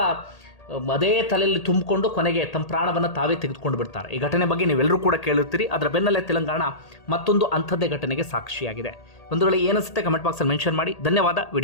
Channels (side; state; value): right; late; 1.8 ms